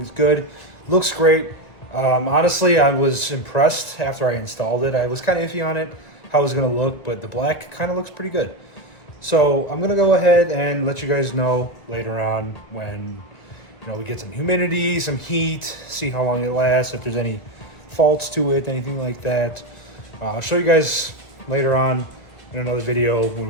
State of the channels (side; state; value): right; late; 1.6 ms